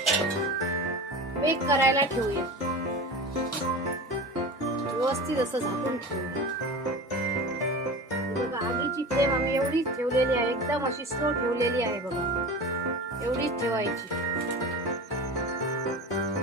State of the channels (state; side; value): normal; both; correlation 0.31